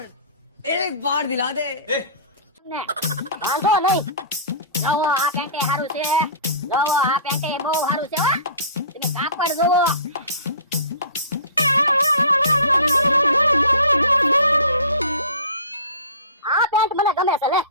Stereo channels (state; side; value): inverted; both; correlation -0.40